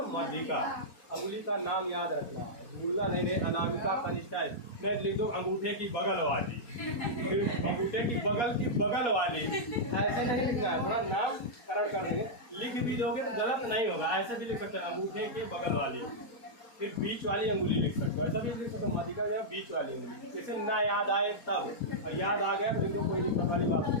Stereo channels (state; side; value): late; right; 4.3 ms